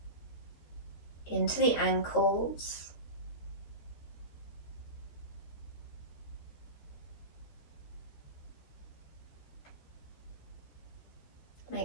into the ankles.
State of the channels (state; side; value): late; right; 13 ms